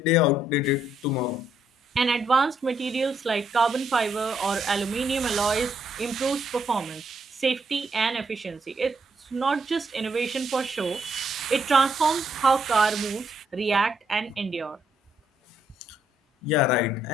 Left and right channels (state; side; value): normal; both; correlation 0.74